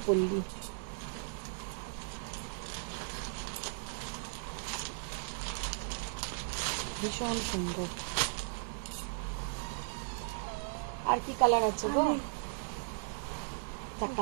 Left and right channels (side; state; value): left; silent; 53 dB below the other